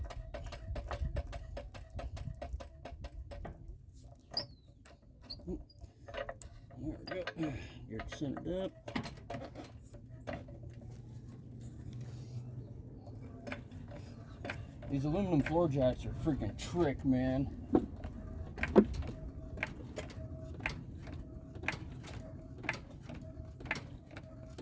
There we go. Get it centered up. These aluminum floor jacks are freaking trick, man.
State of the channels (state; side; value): identical; both; correlation 1.00